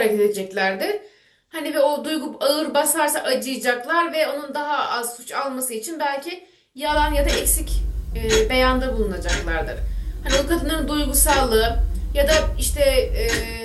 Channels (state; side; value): identical; both; correlation 1.00